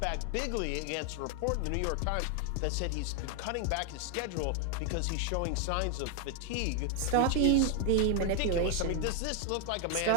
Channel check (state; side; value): different; both; correlation 0.00